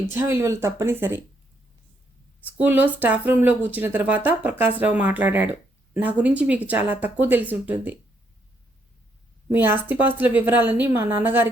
విలువలు తప్పనిసరి. స్కూల్లో స్టాఫ్ రూమ్లో కూర్చున్న తర్వాత ప్రకాశ్రావు మాట్లాడాడు. నా గురించి మీకు చాలా తక్కువ తెలిసి ఉంటుంది. మీ ఆస్తిపాస్తుల వివరాలన్నీ మా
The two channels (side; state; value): both; normal; correlation 0.74